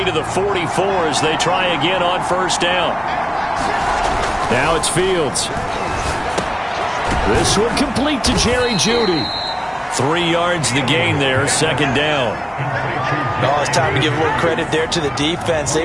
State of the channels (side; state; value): both; identical; correlation 1.00